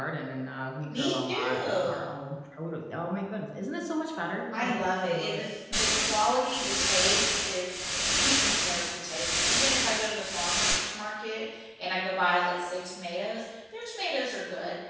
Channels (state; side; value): identical; both; correlation 1.00